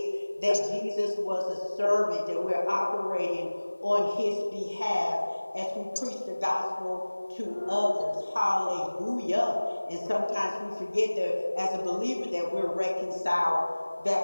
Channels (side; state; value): both; inverted; correlation -1.00